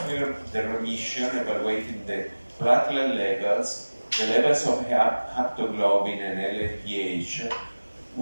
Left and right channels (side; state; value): both; inverted; correlation -1.00